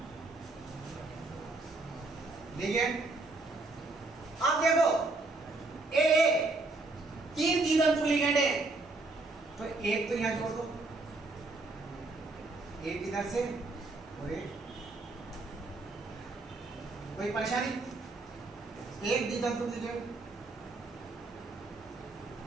लिगेंड। अब देखो AA 3 द्वितंतुक लिगेंड है, तो एक तो यहां जोड़ दो, एक इधर से और एक। कोई परेशानी? एक द्वितंतुक लिगेंड,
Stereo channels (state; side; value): quieter; left; 3.3 dB